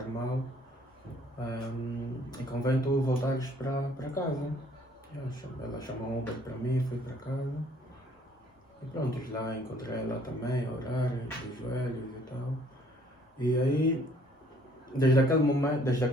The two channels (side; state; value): both; normal; correlation 0.61